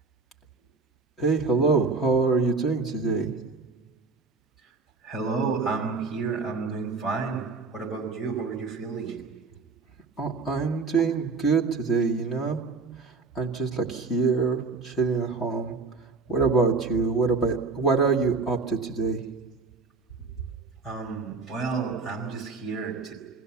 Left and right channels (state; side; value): quieter; left; 4.2 dB